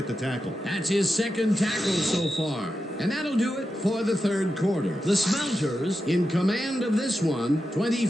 the tackle. That's his 2nd tackle so far. And that'll do it for the 3rd quarter. The Smelters in command of this one,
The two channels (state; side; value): normal; both; correlation 0.89